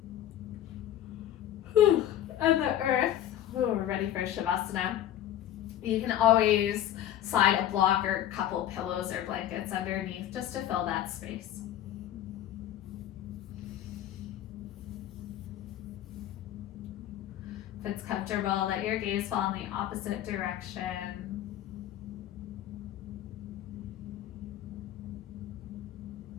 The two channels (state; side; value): quieter; right; 11.7 dB